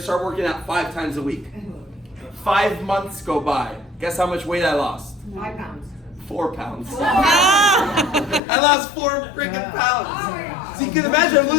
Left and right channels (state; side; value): drops out; right; at 8.4 s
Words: working out 5 times a week. 5 months go by. Guess how much weight I lost? 5 pounds. 4 pounds. I lost 4 freaking pounds. Oh my God. So you can imagine I'm